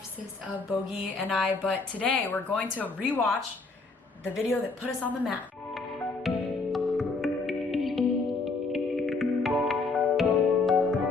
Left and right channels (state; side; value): quieter; right; 3.9 dB